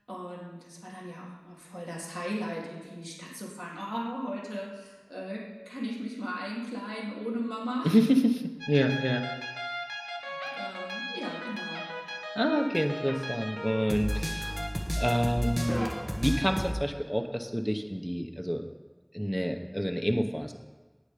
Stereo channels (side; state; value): both; identical; correlation 1.00